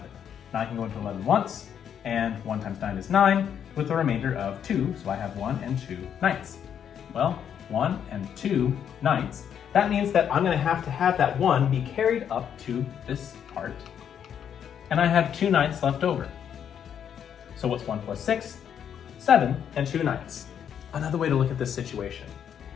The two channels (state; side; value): quieter; right; 8.6 dB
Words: 9 can go into 11 once, and 1 times 9 is 9, with a remainder of 2, so I have 1 and 2/9. Well, 1 and 2/9. That means that I'm going to have that 1 be carried up to this part, and I have 2/9 left over. So what's 1 plus 6? 7 and 2/9. Another way to look at this situation.